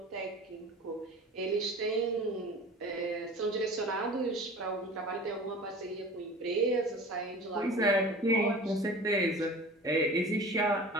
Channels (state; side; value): normal; both; correlation 0.40